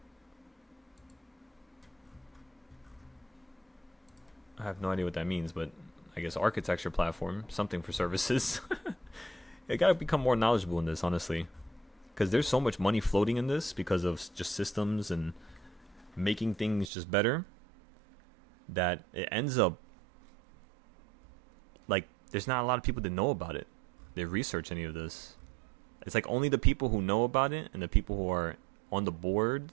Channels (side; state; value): left; drops out; at 16.9 s